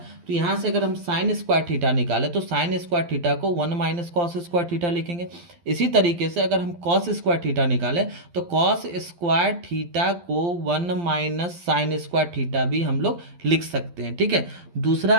तो यहाँ से अगर हम साइन स्क्वायर थीटा निकालें तो साइन स्क्वायर थीटा को 1 माइनस कॉस स्क्वायर थीटा लिखेंगे। इसी तरीके से अगर हम कॉस स्क्वायर थीटा निकालें तो कॉस स्क्वायर थीटा को 1 माइनस साइन स्क्वायर थीटा भी हम लोग लिख सकते हैं, ठीक है। दूसरा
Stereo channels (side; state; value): left; late; 12 ms